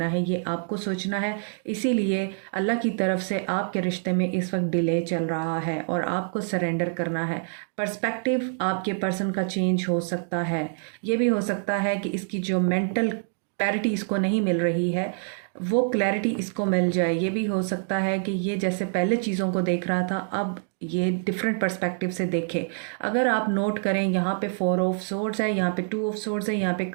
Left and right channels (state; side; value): silent; left; digital silence